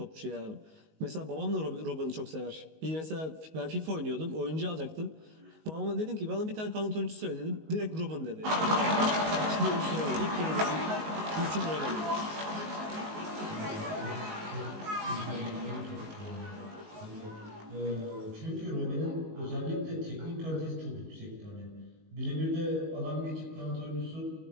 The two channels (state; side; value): late; left; 19 ms